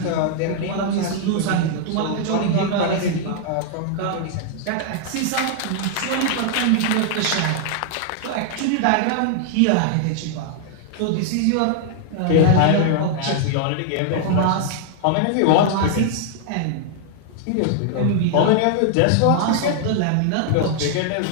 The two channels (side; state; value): both; different; correlation 0.00